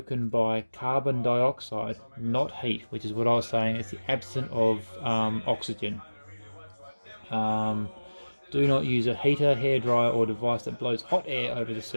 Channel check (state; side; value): inverted; both; correlation -1.00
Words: by carbon dioxide, not heat, which is what I was saying. It's the absence of oxygen. Do not use a heater, hairdryer or device that blows hot air over the